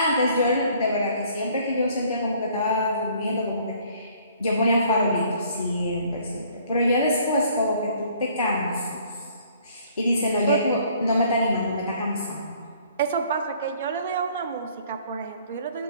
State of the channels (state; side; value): inverted; both; correlation -0.59